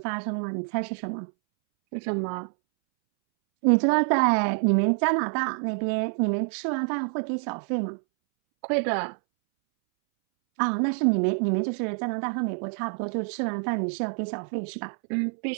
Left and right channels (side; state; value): left; silent; 60 dB below the other